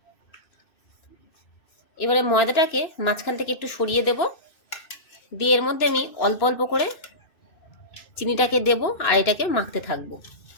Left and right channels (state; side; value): late; right; 2.6 ms